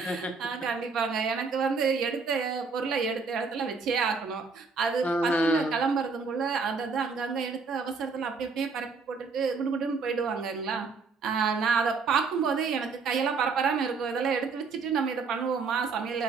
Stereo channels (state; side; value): quieter; left; 4.7 dB